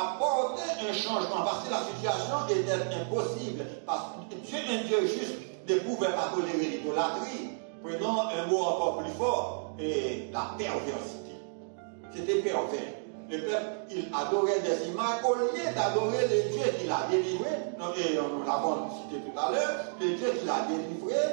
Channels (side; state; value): left; silent; digital silence